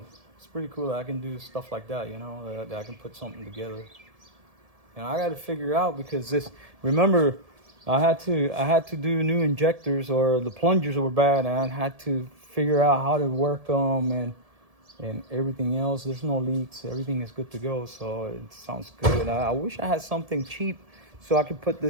It's pretty cool that I can do stuff like that, that I can put something together. And I got to figure out, because remember, I had to do new injectors, or the plungers were bad, and I had to figure out how to work them and everything else. There's no leaks. Everything is good to go. So it sounds good. I wish I had something cheap so I could put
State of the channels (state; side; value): late; left; 1.7 ms